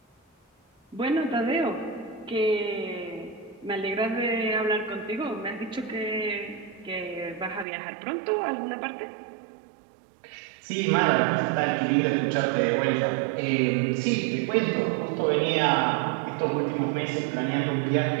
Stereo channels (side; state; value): left; drops out; at 7.7 s